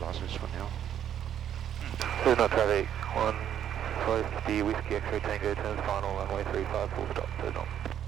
for now. Cessna traffic, 150 Whiskey X-ray Tango, turns final, runway 35, full stop, Cessna.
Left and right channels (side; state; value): left; quieter; 9.9 dB